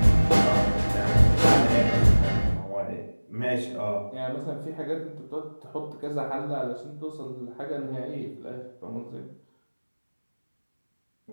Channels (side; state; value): both; inverted; correlation -1.00